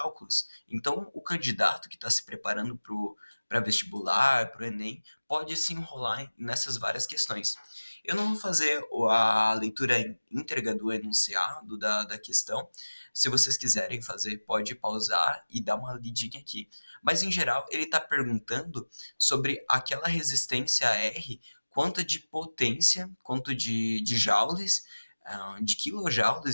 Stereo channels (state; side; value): inverted; both; correlation -1.00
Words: Então, o candidato que está se preparando para vestibular, para o Enem, pode se enrolar nessas várias questões. Eu não vou fazer a leitura íntegra do enunciado da questão. Se vocês quiserem fazer, pode pausar e dar uma lidinha aqui. Mas, em geral, ele está perguntando sobre aquela resistência R, quanto de potência, quanto de joules, de